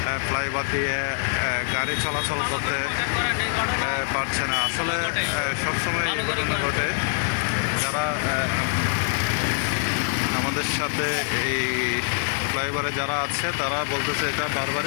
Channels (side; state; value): right; silent; digital silence